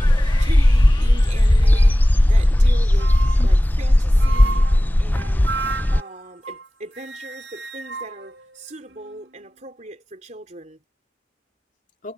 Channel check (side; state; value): both; normal; correlation 0.97